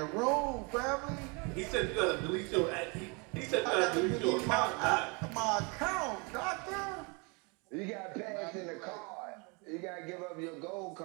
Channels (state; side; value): quieter; left; 31.4 dB